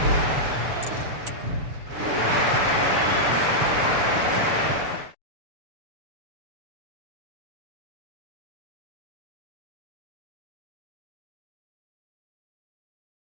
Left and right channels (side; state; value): left; late; 6.9 ms